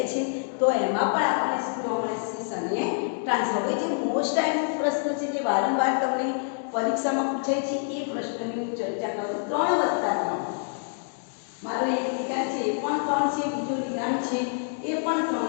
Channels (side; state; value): right; silent; digital silence